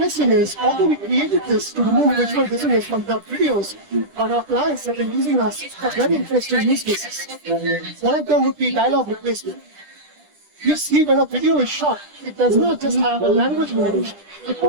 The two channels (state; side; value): late; left; 10 ms